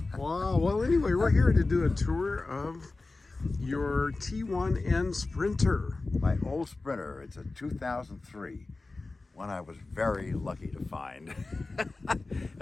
Wow. Well, anyway, we're here to do a tour of your T1N Sprinter. My old Sprinter. It's a 2003. One I was very lucky to find.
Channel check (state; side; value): quieter; right; 3.4 dB